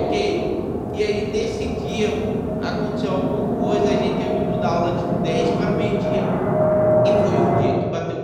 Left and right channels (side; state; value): both; identical; correlation 1.00